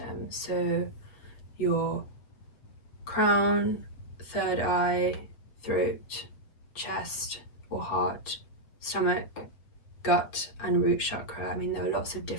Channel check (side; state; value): right; late; 7.9 ms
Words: So your crown, third eye, throat, chest or heart, stomach, gut and root chakra. I mean, there are lots of